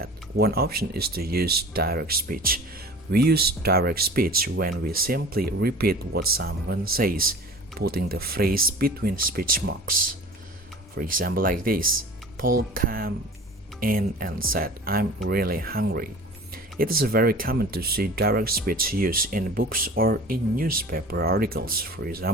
one option is to use direct speech. We use direct speech when we simply repeat what someone says, putting the phrase between speech marks. For example, like this: Paul came in and said, "I'm really hungry." It is very common to see direct speech used in books or in newspaper articles. For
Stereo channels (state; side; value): normal; both; correlation 0.40